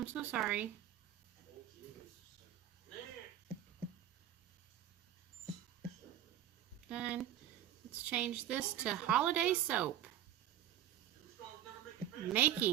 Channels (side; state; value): left; quieter; 11.4 dB